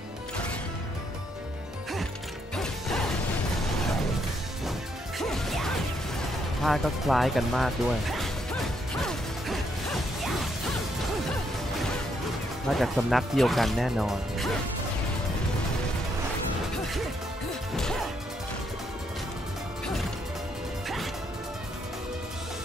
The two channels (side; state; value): both; normal; correlation 0.75